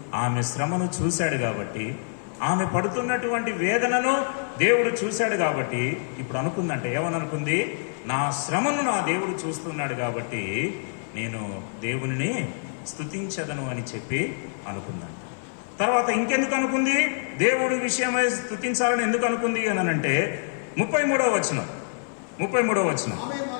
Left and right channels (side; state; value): right; silent; 56 dB below the other